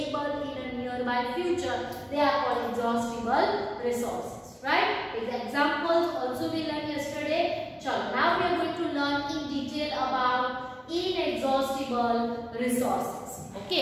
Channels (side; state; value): both; identical; correlation 1.00